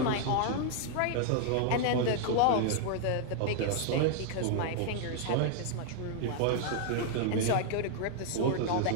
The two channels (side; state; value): both; different; correlation 0.00